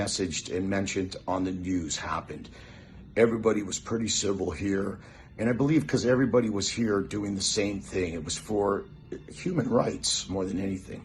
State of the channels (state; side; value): identical; both; correlation 1.00